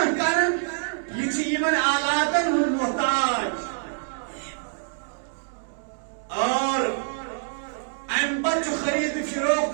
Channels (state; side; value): silent; left; 61 dB below the other